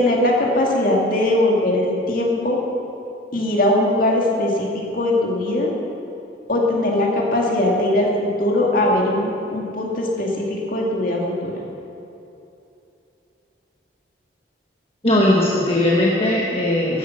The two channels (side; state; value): both; normal; correlation 0.42